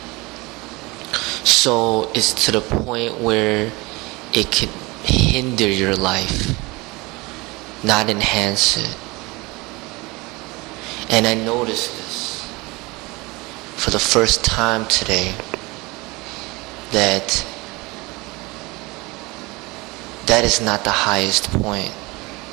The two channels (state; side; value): quieter; left; 23.7 dB